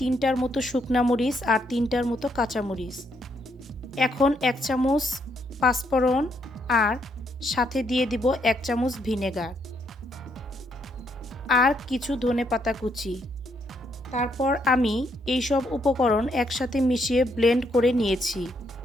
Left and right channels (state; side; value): normal; both; correlation 0.74